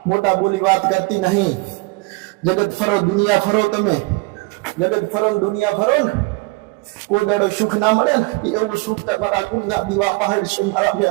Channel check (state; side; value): quieter; left; 25.7 dB